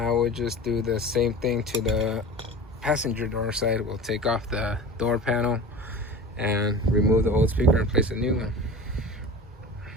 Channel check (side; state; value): both; normal; correlation 0.35